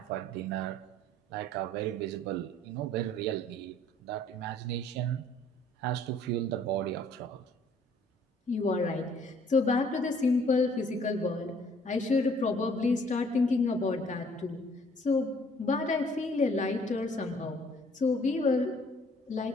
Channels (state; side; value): normal; both; correlation 0.59